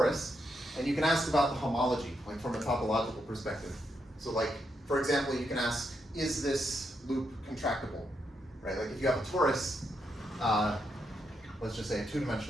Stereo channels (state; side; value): normal; both; correlation 0.81